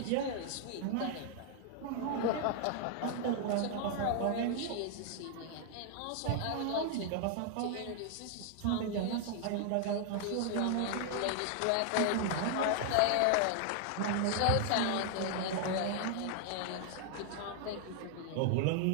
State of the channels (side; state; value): both; different; correlation 0.00